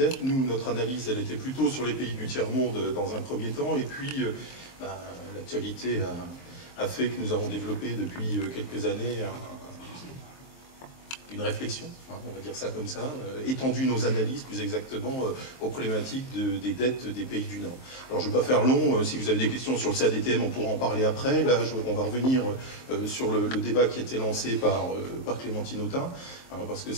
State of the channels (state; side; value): late; right; 23 ms